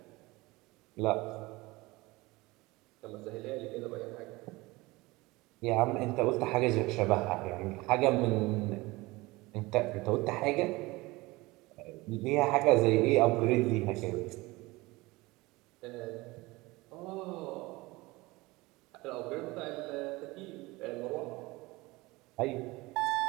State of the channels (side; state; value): left; quieter; 21.8 dB